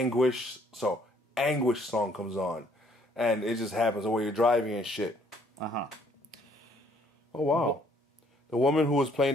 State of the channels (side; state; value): both; normal; correlation 0.64